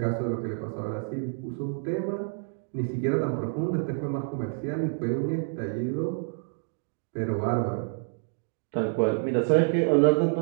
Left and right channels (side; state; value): left; silent; digital silence